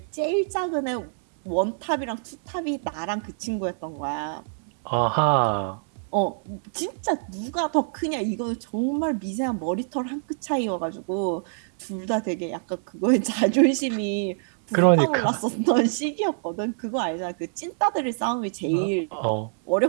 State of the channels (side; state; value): left; silent; 61 dB below the other